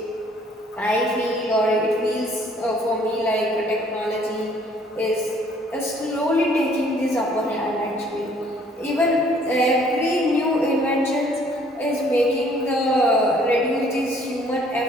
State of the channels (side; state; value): both; normal; correlation 0.60